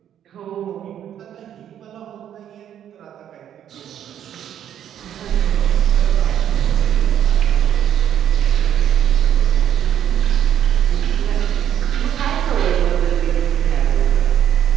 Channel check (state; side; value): quieter; left; 10.1 dB